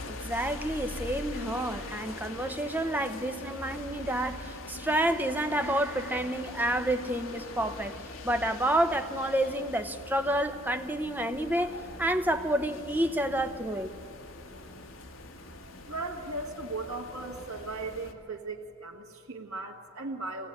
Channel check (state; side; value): normal; both; correlation 0.65